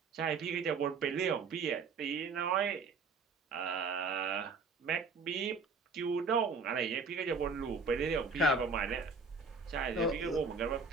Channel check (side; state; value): left; quieter; 4.4 dB